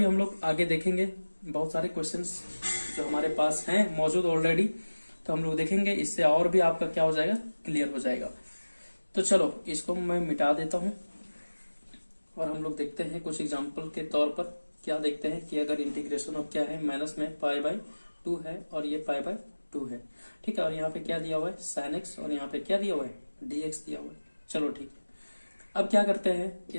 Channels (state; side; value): inverted; both; correlation -1.00